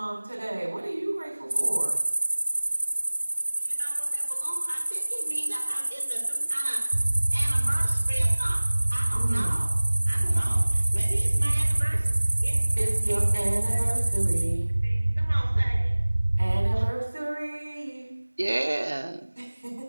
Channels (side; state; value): both; inverted; correlation -1.00